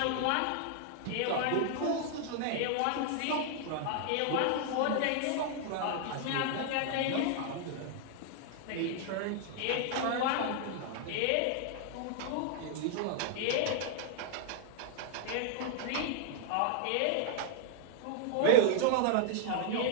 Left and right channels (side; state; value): both; different; correlation 0.00